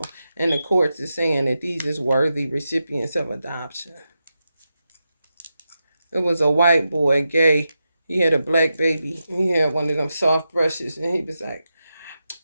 And the courts is saying that these is worthy recipients of adoption. It was a white boy, gay. He had a black baby. He had one of them soft brushes, and he was like,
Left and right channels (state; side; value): inverted; both; correlation -0.89